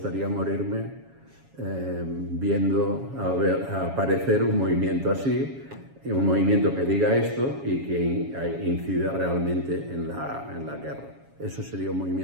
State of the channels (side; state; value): left; late; 7.2 ms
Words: morirme viendo aparecer un movimiento así, un movimiento que diga esto y que incida realmente en la guerra. Eso sería un